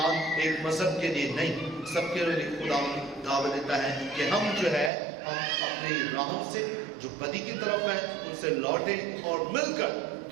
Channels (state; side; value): drops out; left; at 4.9 s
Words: ایک مذہب کے لیے نہیں، سب کے لیے خدا دعوت دیتا ہے کہ ہم جو ہے ہم اپنی راہوں سے جو بدی کی طرف ہیں ان سے لوٹیں اور مل کر